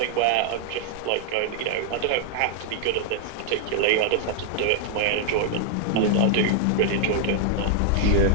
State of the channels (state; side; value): different; both; correlation 0.00